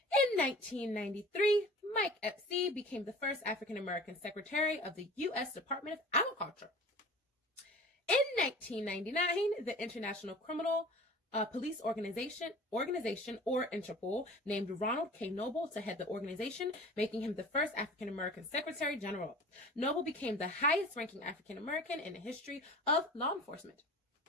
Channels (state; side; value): normal; both; correlation 0.41